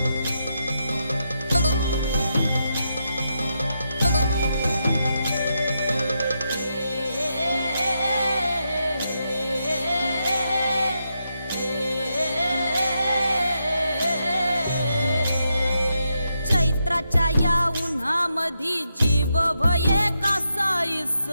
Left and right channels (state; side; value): inverted; both; correlation -0.84